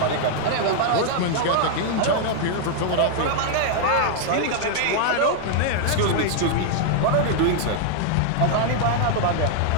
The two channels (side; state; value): both; different; correlation -0.01